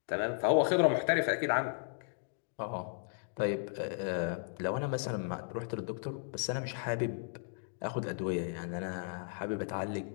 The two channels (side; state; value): right; silent; digital silence